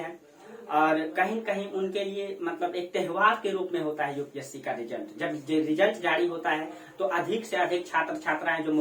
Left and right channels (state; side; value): identical; both; correlation 1.00